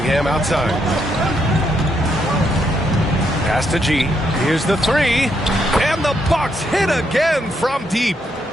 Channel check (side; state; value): both; normal; correlation 0.77